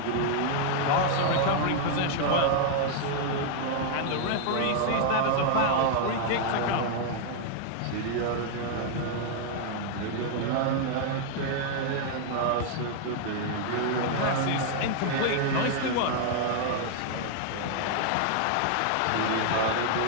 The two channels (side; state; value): both; different; correlation -0.01